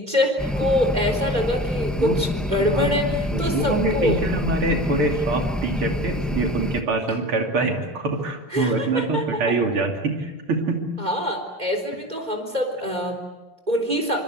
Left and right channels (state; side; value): normal; both; correlation 0.34